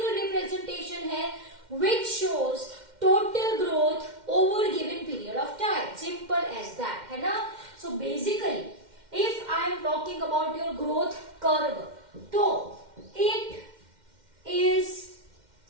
representation है which shows total growth over given period of time. Simple as that, है ना? So basically, if I am talking about your growth curve, तो it is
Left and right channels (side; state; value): left; late; 2.1 ms